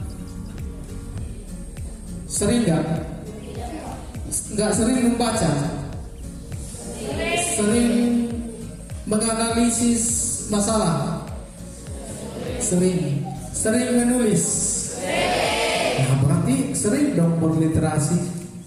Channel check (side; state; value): both; identical; correlation 1.00